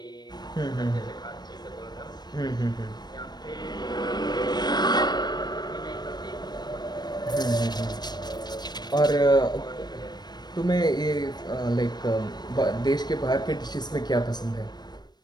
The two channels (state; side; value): late; right; 0.20 ms